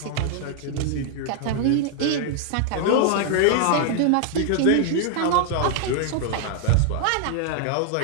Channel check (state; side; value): different; both; correlation 0.00